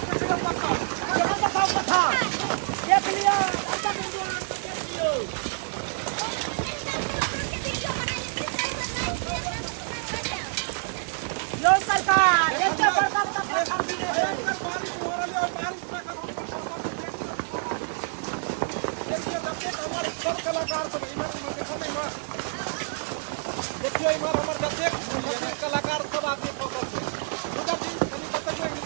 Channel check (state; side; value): silent; left; 60 dB below the other